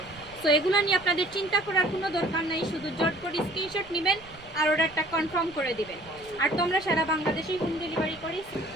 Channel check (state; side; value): noise; right; rumble, 23 dB below the sound